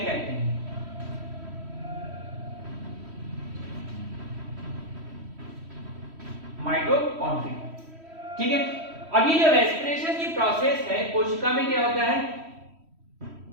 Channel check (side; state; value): left; late; 3.1 ms